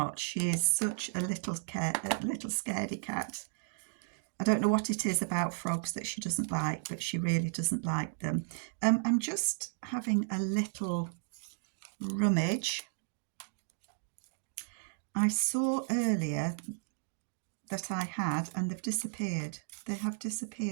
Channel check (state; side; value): silent; left; digital silence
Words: She is such a little scaredy cat. I don't know what it is about frogs that she doesn't like, but she really doesn't like them. I'm just having a little rummage. I saw earlier that I had, and they've disappeared. They have